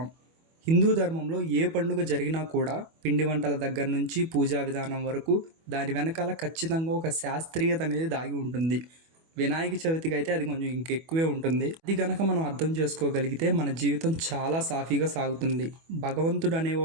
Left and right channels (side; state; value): left; late; 25 ms